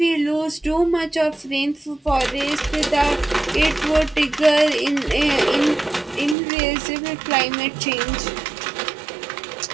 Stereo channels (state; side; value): drops out; left; at 6.4 s